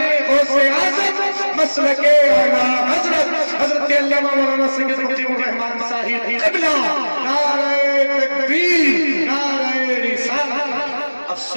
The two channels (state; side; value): inverted; both; correlation -1.00